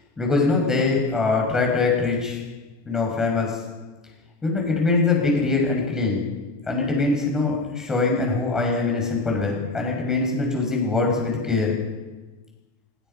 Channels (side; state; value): right; quieter; 3.3 dB